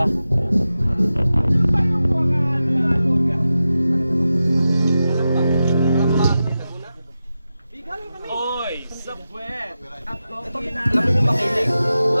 Oy, sa puwet! Alam mo yung makinig?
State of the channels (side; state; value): both; inverted; correlation -0.92